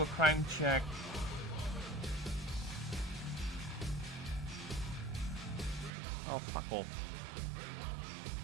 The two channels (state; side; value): drops out; left; at 6.0 s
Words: a crime check. Oh, fuck off.